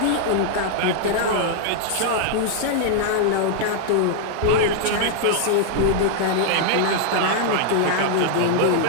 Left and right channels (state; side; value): different; both; correlation -0.01